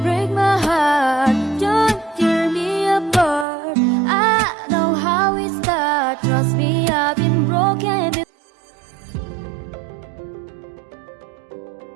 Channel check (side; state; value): left; drops out; at 3.5 s